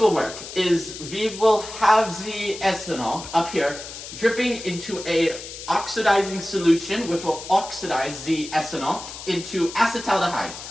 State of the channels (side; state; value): left; noise; hiss, 12 dB below the sound